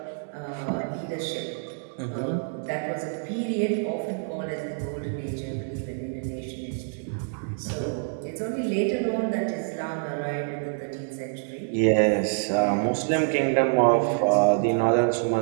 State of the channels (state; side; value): silent; left; digital silence